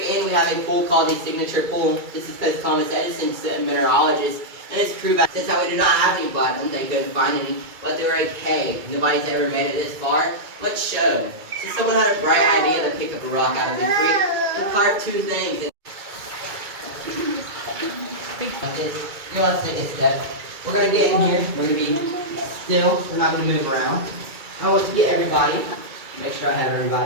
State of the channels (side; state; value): left; late; 2.3 ms